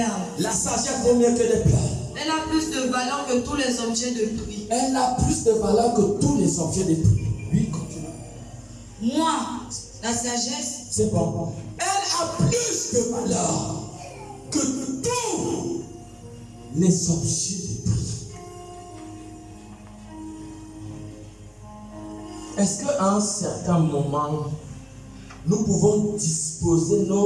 La sagesse vaut mieux que les perles. Elle a plus de valeur que tous les objets de prix. Elle a plus de valeur que tous les objets de prix. Oui, continue. Moi, la sagesse, c'est bon. Elle a plus de valeur que tous les objets de prix. Est-ce qu'à un certain moment, nous pouvons disposer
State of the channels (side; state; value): both; identical; correlation 1.00